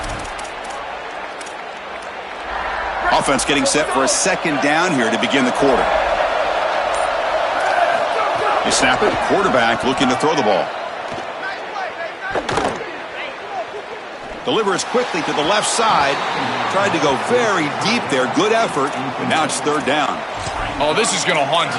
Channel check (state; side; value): identical; both; correlation 1.00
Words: Offense getting set for a 2nd down here to begin the quarter. They snap it. Quarterback looking to throw the ball. Delivers quickly to the left side. Tried to go very deep there. Good effort. And now it's 3rd down. Oh, this is going to haunt